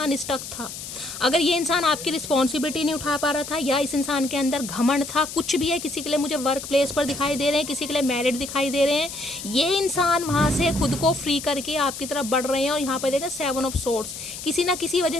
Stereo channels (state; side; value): noise; left; hiss, 10 dB below the sound